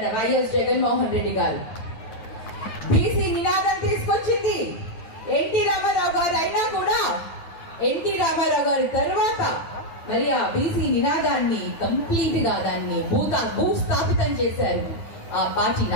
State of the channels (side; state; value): right; late; 9.1 ms